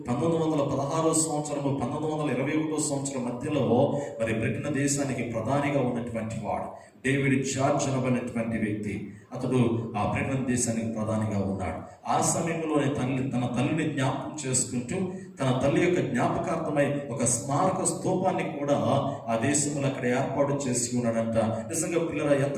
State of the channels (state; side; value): identical; both; correlation 1.00